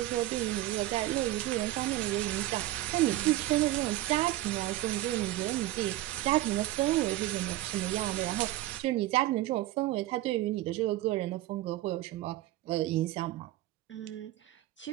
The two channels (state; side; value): quieter; left; 16.0 dB